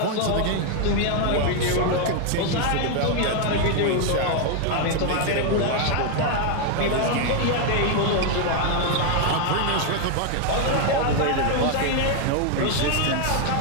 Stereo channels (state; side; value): different; both; correlation 0.01